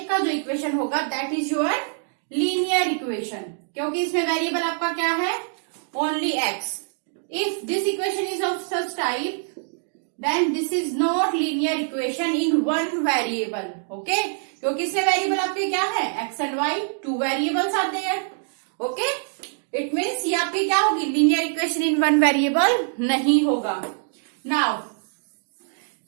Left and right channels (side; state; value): left; silent; digital silence